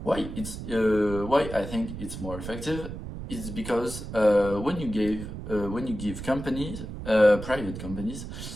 Why I think it's more effective is because when you give companies, private companies,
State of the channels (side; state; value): right; noise; rumble, 9 dB below the sound